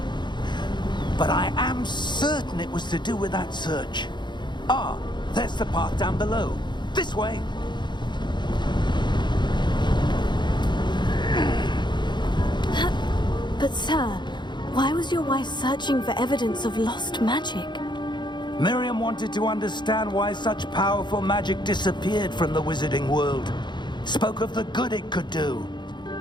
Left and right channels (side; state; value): right; late; 0.22 ms